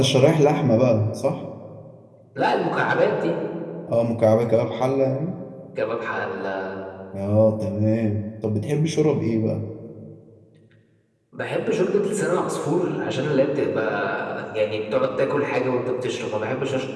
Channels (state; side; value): identical; both; correlation 1.00